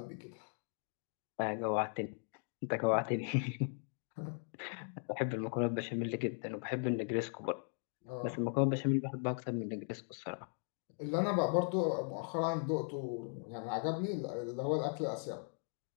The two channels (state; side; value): silent; right; 52 dB below the other